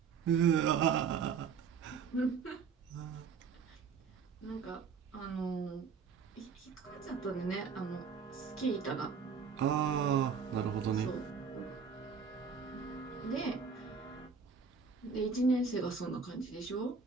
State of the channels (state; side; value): quieter; left; 5.9 dB